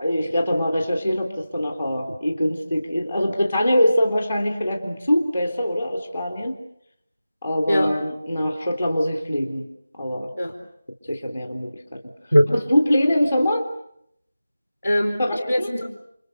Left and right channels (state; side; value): inverted; both; correlation -0.94